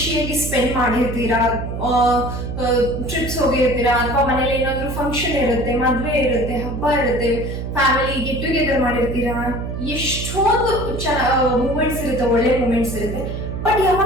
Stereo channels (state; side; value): noise; right; hum, 5 dB below the sound